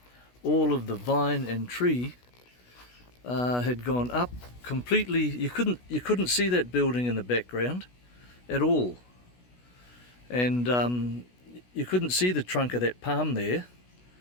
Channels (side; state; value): right; late; 16 ms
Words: all of the vine and tree had gone up completely. You couldn't see that building in the background at all, and you couldn't see the trunk of that palm there